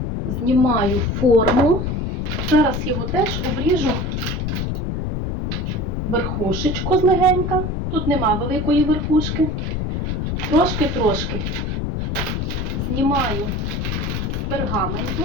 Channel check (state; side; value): noise; left; rumble, 1 dB below the sound